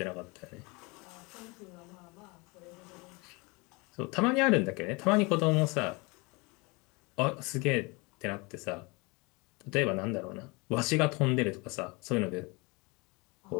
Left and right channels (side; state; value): right; quieter; 27.3 dB